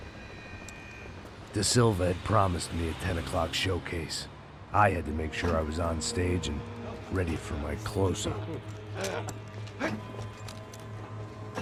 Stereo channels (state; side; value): identical; both; correlation 1.00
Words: De Silva had promised me a 10 o'clock showcase. I had to make sure I was on stage and ready for my close-up.